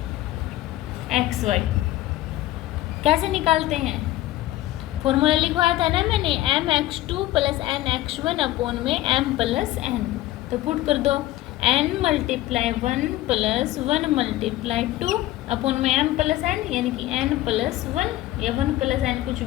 xy कैसे निकालते हैं, फॉर्मूला लिखवाया था ना मैंने, mx2 प्लस nx1 अपॉन में m प्लस n, तो पुट कर दो n multiply 1 plus 1 multiply 2 upon में m प्लस n, यानी कि n प्लस 1 या 1 प्लस n कुछ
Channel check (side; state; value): right; quieter; 15.8 dB